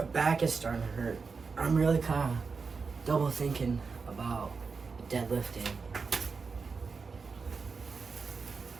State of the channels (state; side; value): quieter; left; 4.9 dB